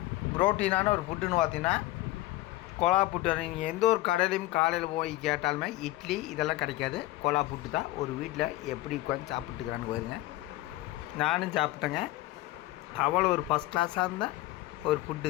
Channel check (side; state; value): right; quieter; 17.6 dB